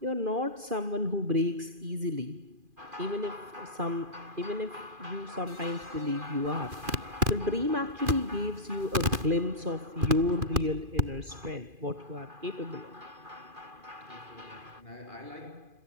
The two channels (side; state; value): left; late; 2.4 ms